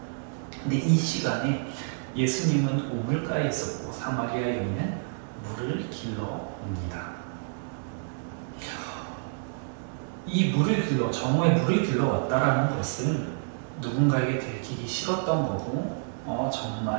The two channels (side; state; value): left; silent; 59 dB below the other